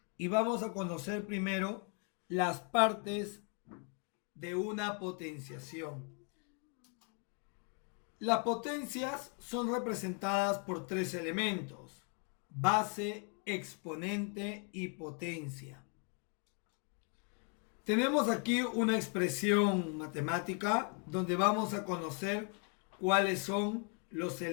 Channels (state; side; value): quieter; right; 36.0 dB